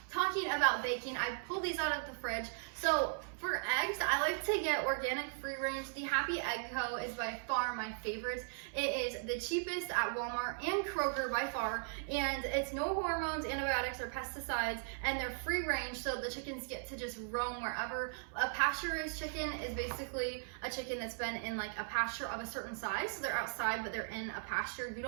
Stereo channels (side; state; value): left; silent; 53 dB below the other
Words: Talking about baking, I pulled these out of the fridge. So for eggs, I like to get organic free range. The Happy Egg Co. is by far my favorite. It is the cheapest at Walmart and Kroger by far, and it's no hormones, antibiotics, or pesticides, and they're free range, so the chickens get to just roam wherever. A pasture-raised chicken is basically a chicken that's been in like a pasture of a certain size, so they're outside, but they're in a pasture. You